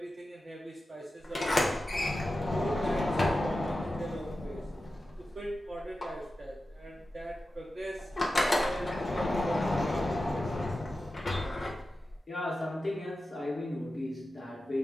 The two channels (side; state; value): both; normal; correlation 0.93